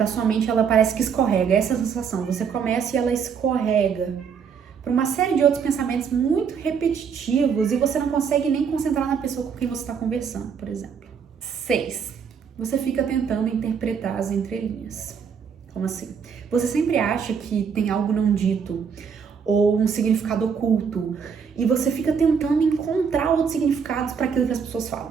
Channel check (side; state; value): left; quieter; 6.6 dB